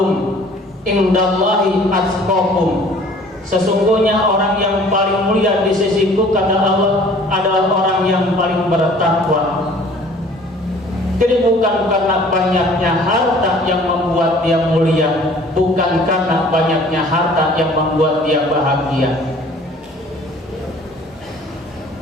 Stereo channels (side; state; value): both; normal; correlation 0.52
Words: indallahi atqakum." Sesungguhnya orang yang paling mulia di sisiku, kata Allah, adalah orang yang paling bertakwa. Jadi bukan karena banyaknya harta yang membuat dia mulia, bukan karena banyaknya harta yang membuat dia bahagia.